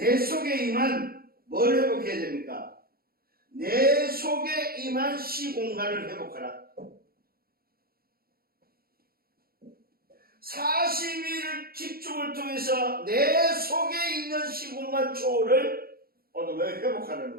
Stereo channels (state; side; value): late; left; 0.44 ms